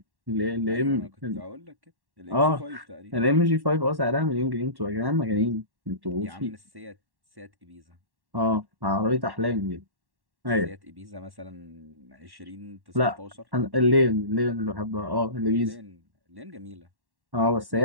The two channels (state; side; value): late; left; 1.1 ms